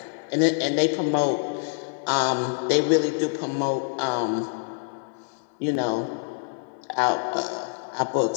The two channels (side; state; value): right; silent; digital silence